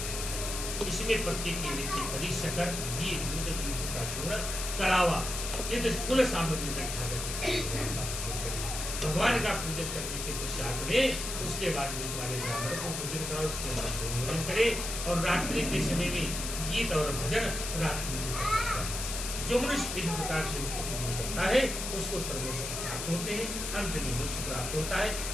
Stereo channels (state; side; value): noise; left; hiss, 4 dB below the sound